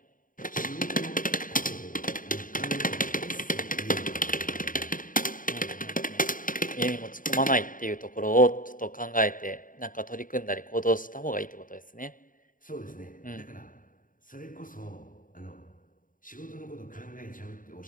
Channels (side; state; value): right; late; 0.39 ms